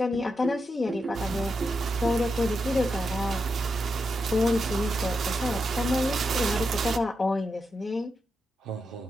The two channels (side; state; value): both; normal; correlation 0.86